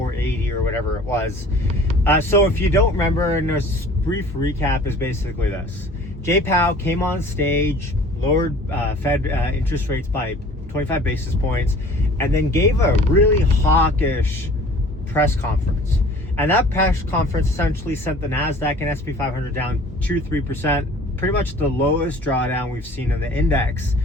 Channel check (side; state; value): both; normal; correlation 0.48